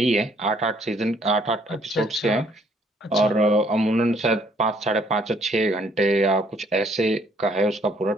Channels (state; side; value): normal; both; correlation 0.64